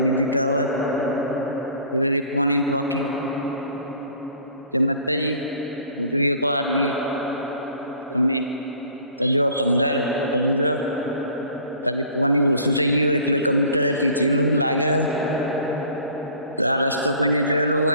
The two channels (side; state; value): both; inverted; correlation -0.50